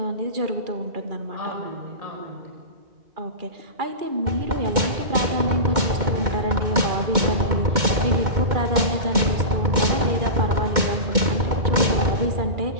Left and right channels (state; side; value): late; left; 2.1 ms